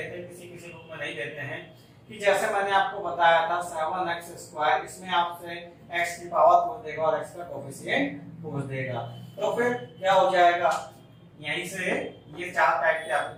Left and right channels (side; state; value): both; identical; correlation 1.00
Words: हैं, किसी किसी बुक में नहीं देते हैं, कि जैसे मैंने आपको बताया था 7x², इसमें आपसे x की पावर पूछ देगा और x का कोएफिशिएंट पूछ देगा। तो फिर क्या हो जाएगा, यहीं से ये 4 टाइप के आपके